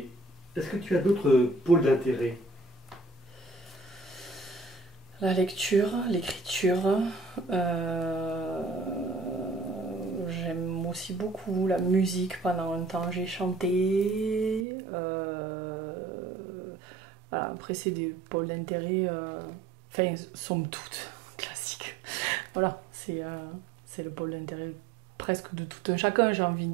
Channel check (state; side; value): drops out; left; at 14.7 s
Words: est-ce que tu as d'autres pôles d'intérêt? La lecture, l'écriture. euh, J'aime aussi beaucoup la musique. Pendant un temps, j'ai chanté. Voilà, après, c'est des pôles d'intérêt. Enfin, somme toute, classiques. Voilà, c'est le pôle d'intérêt presque de tout un chacun, j'ai envie de